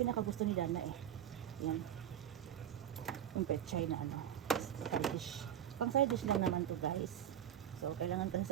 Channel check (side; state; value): left; quieter; 10.4 dB